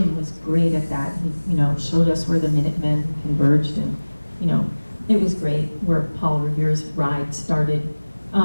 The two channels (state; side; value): inverted; both; correlation -1.00